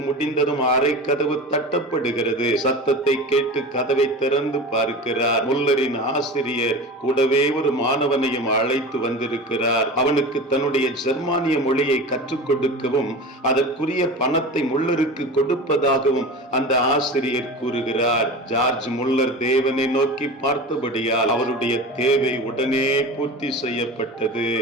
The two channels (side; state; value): both; normal; correlation 0.31